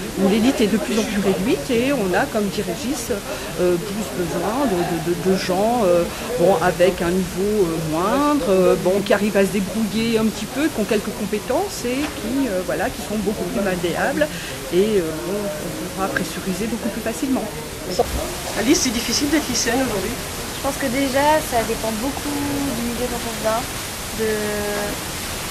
où l'élite est de plus en plus réduite, et on a, comme dit Régis, plus besoin de gens avec un niveau moindre, qui arrivent à se débrouiller un petit peu, qui ont quelques compétences et qui sont beaucoup plus malléables, et on pourra pressuriser beaucoup plus facilement. Alice, c'est difficile d'être lycéenne aujourd'hui? Je pense que déjà, ça dépend beaucoup du milieu dont on vient,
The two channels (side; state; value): both; identical; correlation 1.00